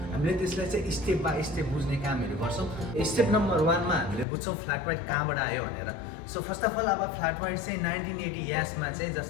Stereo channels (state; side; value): drops out; right; at 4.2 s